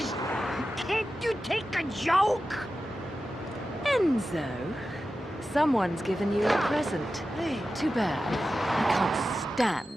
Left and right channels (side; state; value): both; normal; correlation 0.93